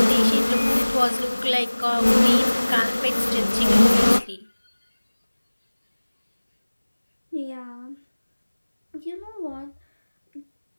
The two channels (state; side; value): inverted; both; correlation -1.00